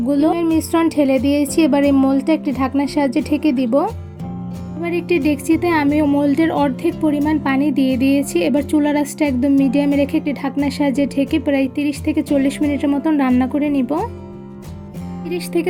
মিশ্রণ ঢেলে দিয়েছি। এবার এই মোল্ডটা একটি ঢাকনার সাহায্যে ঢেকে দিব। এবার একটি ডেকচিতে আমি মোল্ডের অর্ধেক পরিমাণ পানি দিয়ে দিয়েছি। এবার চুলার আঁচটা একদম মিডিয়ামে রেখে একটি ঢাকনার সাহায্যে ঢেকে প্রায় 30 থেকে 40 মিনিটের মতন রান্না করে নিব। 30 থেকে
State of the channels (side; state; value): both; identical; correlation 1.00